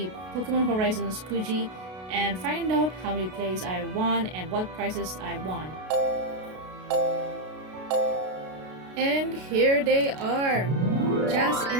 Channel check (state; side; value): late; left; 32 ms